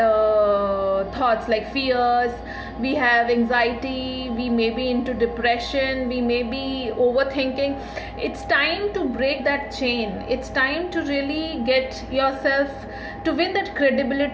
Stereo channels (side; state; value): both; identical; correlation 1.00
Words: thoughts like fears. We have anxiety. We may be into depression. We may be overthinking. It's time to break that chain. It's time to really get yourself to win that